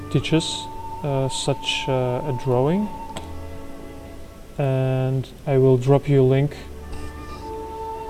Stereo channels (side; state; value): both; identical; correlation 1.00